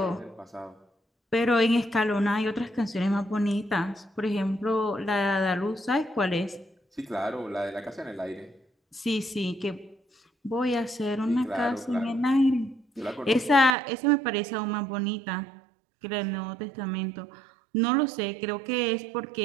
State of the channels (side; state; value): left; drops out; at 13.8 s